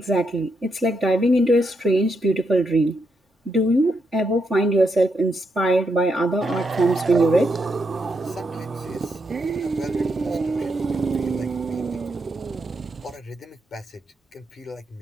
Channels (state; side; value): normal; both; correlation 0.81